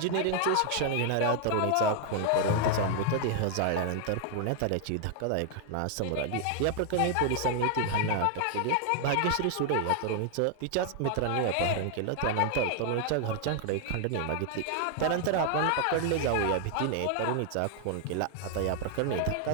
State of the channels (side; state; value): both; different; correlation 0.00